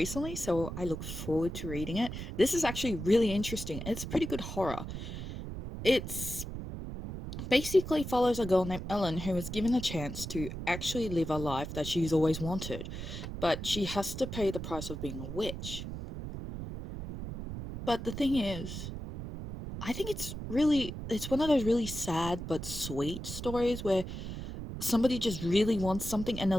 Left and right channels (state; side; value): noise; right; rumble, 7 dB below the sound